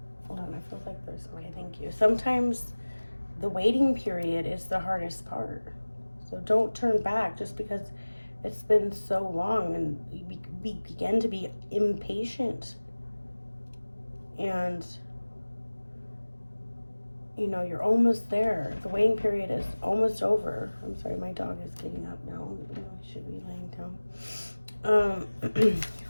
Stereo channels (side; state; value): both; inverted; correlation -1.00